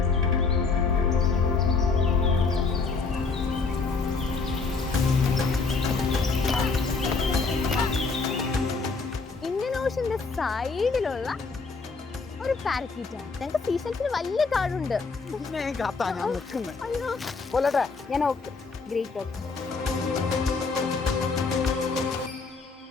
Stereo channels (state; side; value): quieter; right; 4.4 dB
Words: ഇന്ത്യൻ ഓഷന്റെ സൈഡിലുള്ള ഒരു പാരക്യൂട്ടാണ്. ഞങ്ങൾക്ക് സീസൺസിന് വലിയ കാടുണ്ട്. ഞാൻ ഓക്കെ, ഗ്രേറ്റ് ഓക്കെ.